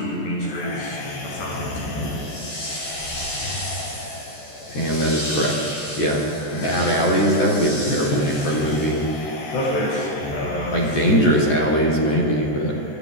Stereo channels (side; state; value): right; late; 14 ms